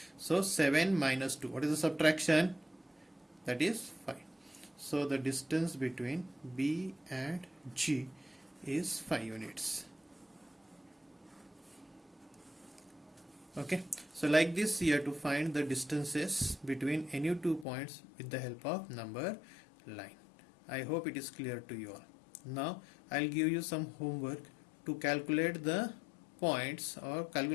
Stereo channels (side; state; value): right; drops out; at 17.7 s